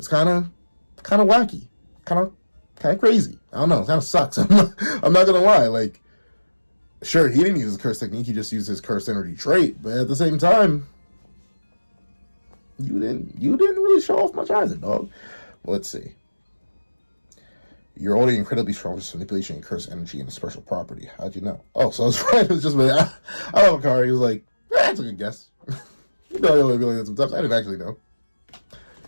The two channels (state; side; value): inverted; both; correlation -1.00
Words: kind of wacky. Kind of crazy. I don't know. It kind of sucks. I'm not going to lie. Like, sure, he didn't use his curse technique. He just used his cursed energy trait. But at the same time, you didn't really show off much either, dog. Well, let's see. You're already incredibly strong with manipulation and curse energy and a special property. How'd you know? Oh, so I was right. It was just, I love Hakari. He was like, that's a good guess. You know, I only be like that sometimes. I didn't actually know. I